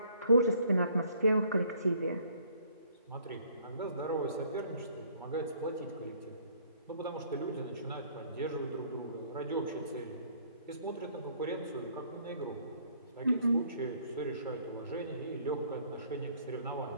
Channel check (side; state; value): both; inverted; correlation -0.61